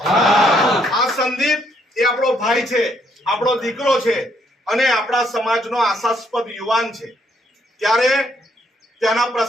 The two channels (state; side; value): normal; both; correlation 0.71